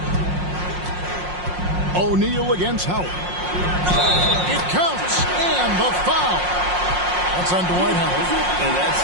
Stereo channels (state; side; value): late; left; 5.6 ms